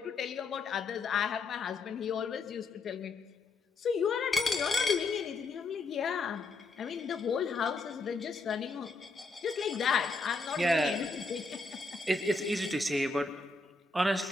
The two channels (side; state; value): right; quieter; 3.6 dB